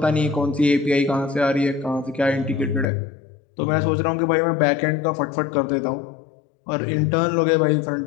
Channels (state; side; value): drops out; right; at 2.9 s